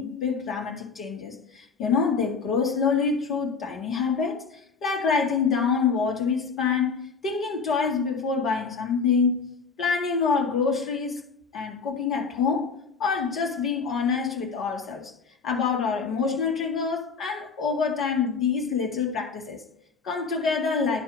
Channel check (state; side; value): quieter; right; 5.1 dB